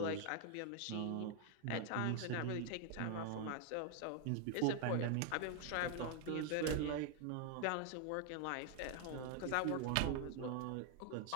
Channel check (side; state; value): both; different; correlation 0.00